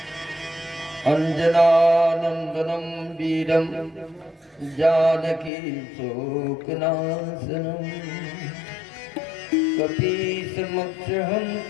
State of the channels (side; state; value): right; drops out; at 5.5 s